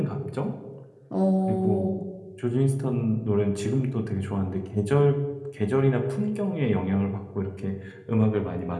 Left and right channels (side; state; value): both; identical; correlation 1.00